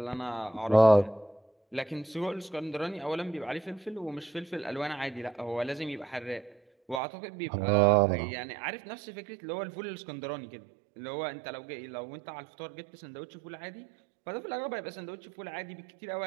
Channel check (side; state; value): left; drops out; at 7.0 s